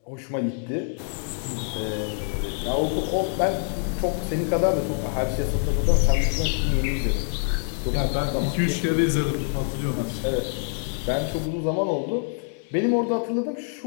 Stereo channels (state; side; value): silent; right; 55 dB below the other